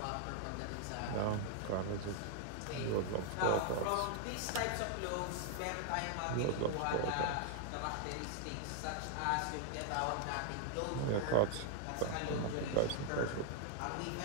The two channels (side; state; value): both; different; correlation 0.00